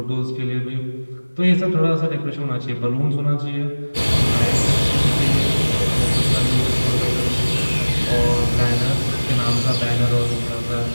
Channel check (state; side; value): inverted; both; correlation -1.00